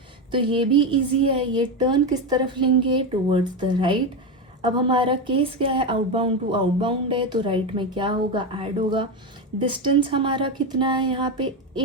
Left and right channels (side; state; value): both; normal; correlation 0.13